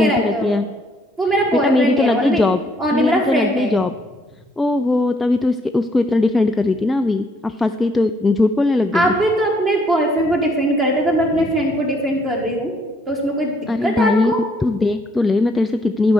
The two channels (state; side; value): normal; both; correlation 0.68